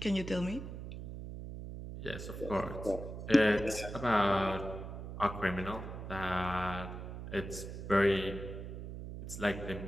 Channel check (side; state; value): right; noise; hum, 8 dB below the sound